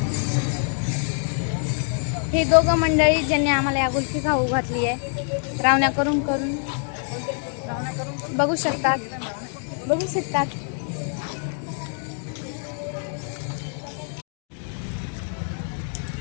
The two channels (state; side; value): silent; right; 58 dB below the other